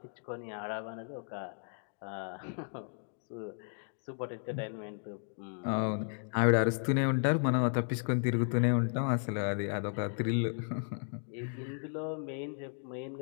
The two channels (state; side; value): silent; right; 55 dB below the other